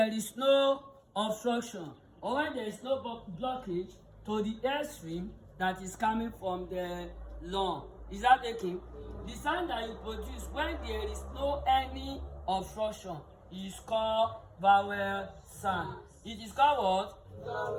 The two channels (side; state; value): both; identical; correlation 1.00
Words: is no obstruction or when there is no blockage to the airstream that is coming from the lung. Is that taken? The sound that you produce when there is no any obstruction is called vowel sound. It is called what?